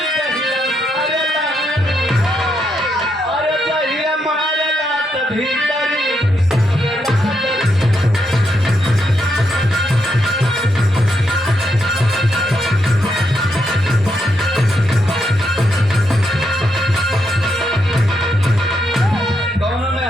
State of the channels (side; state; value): both; normal; correlation 0.79